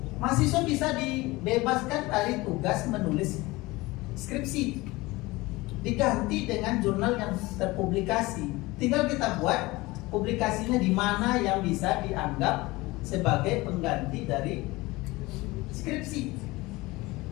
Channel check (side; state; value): right; quieter; 21.3 dB